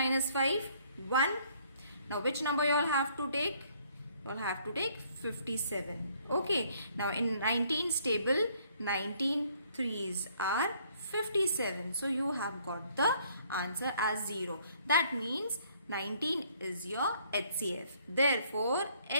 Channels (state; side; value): inverted; both; correlation -0.64